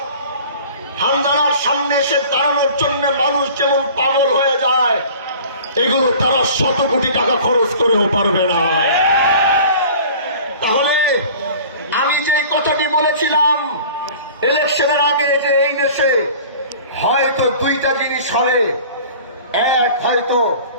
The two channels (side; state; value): both; inverted; correlation -0.44